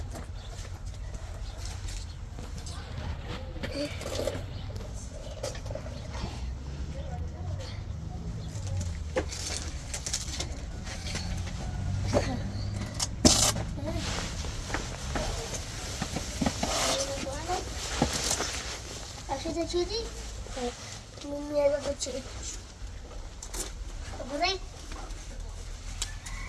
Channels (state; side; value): identical; both; correlation 1.00